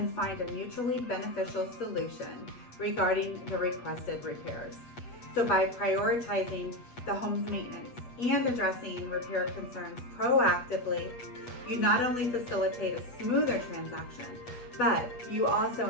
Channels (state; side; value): late; right; 8.2 ms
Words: find a mutually beneficial solution regarding the requested repairs. So by prioritizing the home's maintenance and addressing repair concerns proactively, you not only facilitate a smoother transaction, but you also